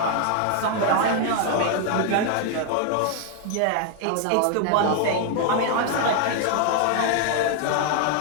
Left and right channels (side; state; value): both; different; correlation 0.00